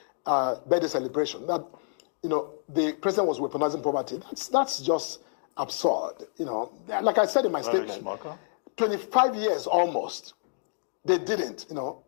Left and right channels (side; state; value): right; silent; digital silence